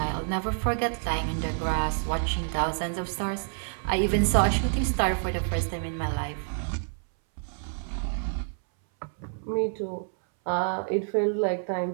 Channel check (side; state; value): left; silent; 59 dB below the other